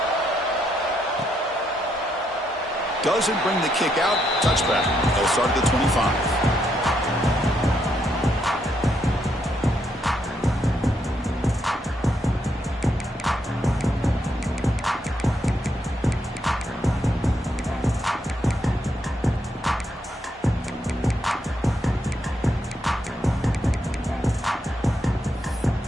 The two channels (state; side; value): normal; both; correlation 0.77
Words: Doesn't bring the kick out. Touchback. They'll start at the 25.